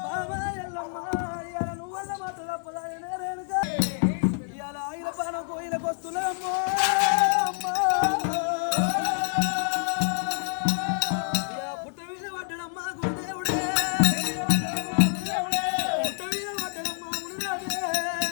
ఇవాళ ఆయన బాణం కోయిలకు వస్తున్నామ్మో అమ్మా పుట్ట మీద పడ్డడమ్మా గురుదేవుడే పుట్ట మీద పడ్డడమ్మా మునిరాజే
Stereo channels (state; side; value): silent; right; digital silence